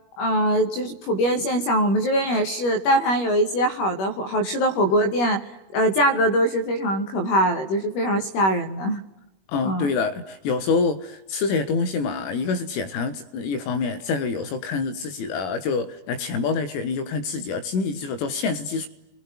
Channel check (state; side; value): late; right; 21 ms